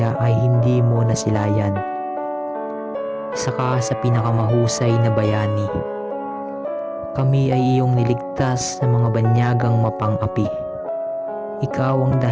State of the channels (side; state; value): both; identical; correlation 1.00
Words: ay hindi mo nasilayan. Isa ka sa pinakamahusay na bayani. Kami ay iyong niligtas sa mga banyagang mapang-api. Ikaw ang